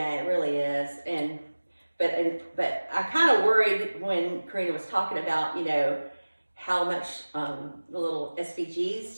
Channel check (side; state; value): both; inverted; correlation -1.00